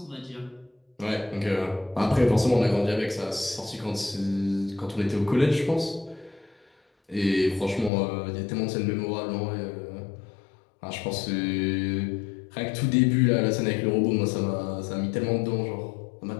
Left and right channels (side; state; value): right; drops out; at 7.9 s